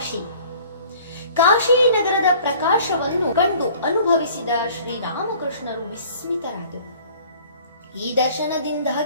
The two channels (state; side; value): inverted; both; correlation -0.51